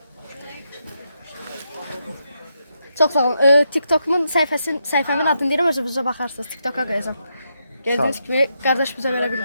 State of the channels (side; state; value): both; inverted; correlation -0.82